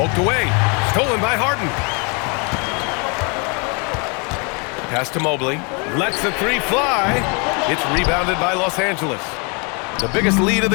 away. Stolen by Harden. Pass to Mobley. Lets the 3 fly. It's rebounded by Los Angeles. The biggest lead of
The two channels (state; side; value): quieter; right; 33.8 dB